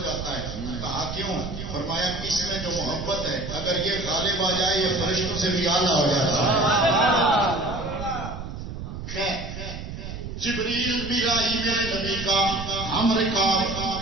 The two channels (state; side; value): noise; right; rumble, 8 dB below the sound